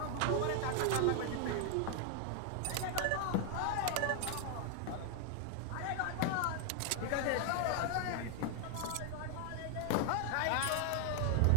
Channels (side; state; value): both; different; correlation 0.00